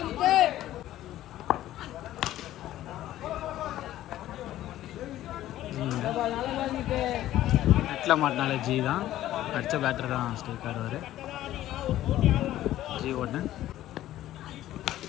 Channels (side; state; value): right; quieter; 13.8 dB